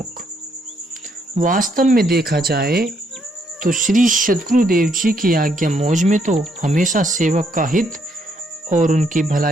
वास्तव में देखा जाए तो श्री सद्गुरु देव जी की आज्ञा मौज में तो हमेशा सेवक का हित और उनकी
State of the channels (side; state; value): both; normal; correlation 0.73